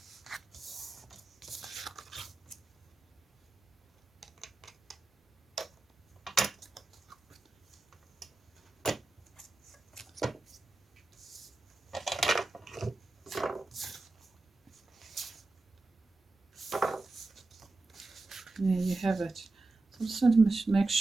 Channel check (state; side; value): quieter; left; 3.3 dB